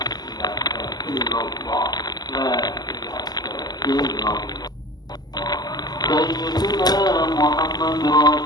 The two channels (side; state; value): right; late; 0.20 ms